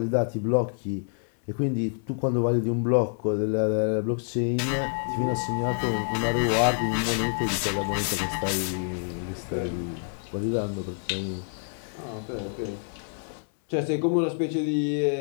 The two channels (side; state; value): right; silent; 60 dB below the other